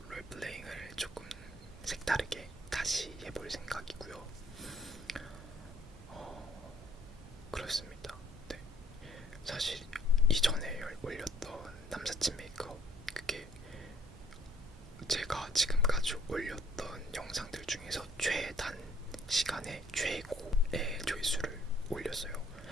롤플레잉을 조금 색다르게 다시 해볼 생각이고요. 그렇습니다. 네. 사실 이전에 올렸던 남사친 메이크업, 그게 제가 지금까지 올렸던 영상들 중에서 최단 시간에 최고의 조회수를 올렸어요.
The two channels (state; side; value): normal; both; correlation 0.61